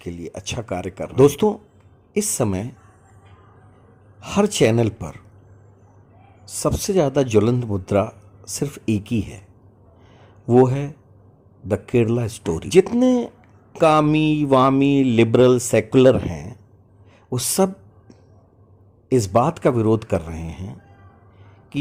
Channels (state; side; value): identical; both; correlation 1.00